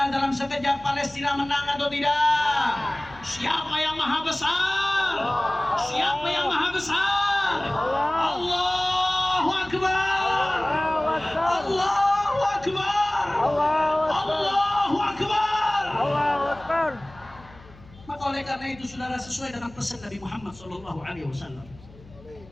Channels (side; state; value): left; noise; hum, 22 dB below the sound